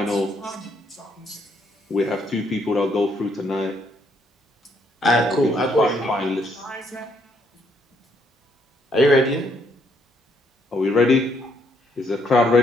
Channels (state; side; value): normal; both; correlation 0.71